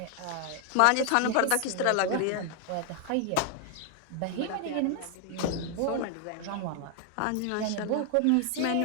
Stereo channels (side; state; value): both; different; correlation 0.00